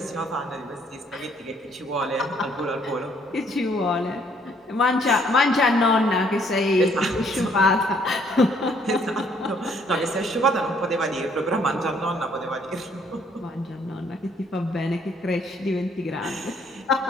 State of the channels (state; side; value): normal; both; correlation 0.65